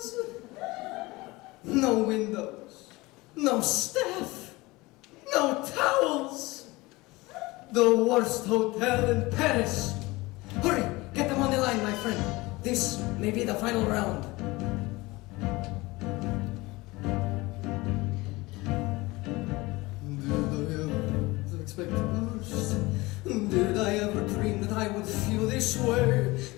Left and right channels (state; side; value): quieter; right; 21.8 dB